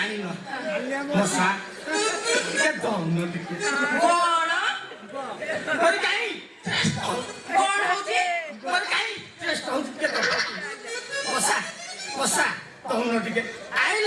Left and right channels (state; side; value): identical; both; correlation 1.00